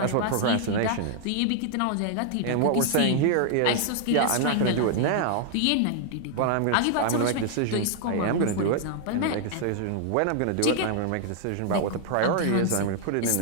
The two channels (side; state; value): both; different; correlation 0.00